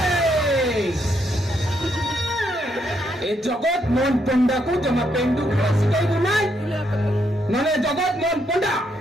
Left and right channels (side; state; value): both; normal; correlation 0.76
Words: ଏ ଜଗତ ମୋହନ ପଣ୍ଡାକୁ ଜମା ପେଣ୍ଡୁ ଖେଳ ଶିଖାଇବୁ ନାହିଁ ନହେଲେ ଜଗତ ମୋହନ ପଣ୍ଡା